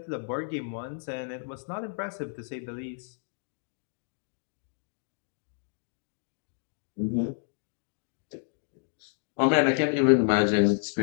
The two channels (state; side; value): silent; right; digital silence